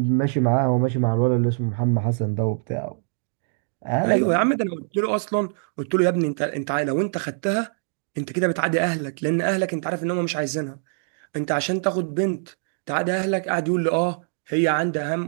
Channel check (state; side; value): silent; left; digital silence